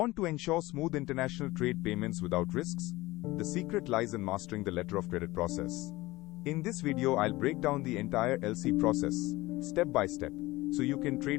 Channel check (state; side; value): quieter; right; 19.7 dB